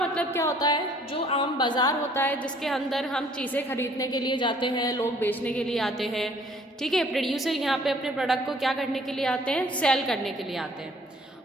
क्या होता है? जो आम बाज़ार होता है जिसके अंदर हम चीज़ें खरीदने के लिए जाते हैं, लोग बेचने के लिए आते हैं। ठीक है, प्रोड्यूसर यहाँ पे अपने प्रोडक्ट को क्या करने के लिए आते हैं? सेल करने के लिए आते हैं।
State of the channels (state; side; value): normal; both; correlation 0.58